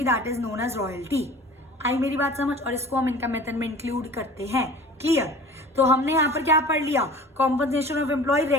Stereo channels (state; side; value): normal; both; correlation 0.42